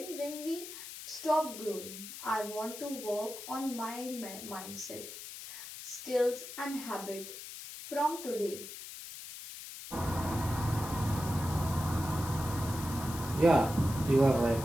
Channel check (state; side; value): noise; left; hiss, 11 dB below the sound